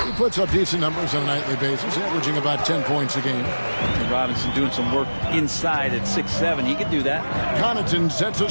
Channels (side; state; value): both; inverted; correlation -1.00